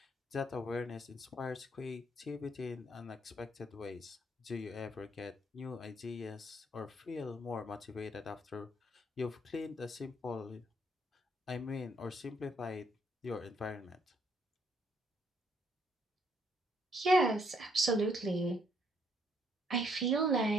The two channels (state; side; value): normal; both; correlation 0.69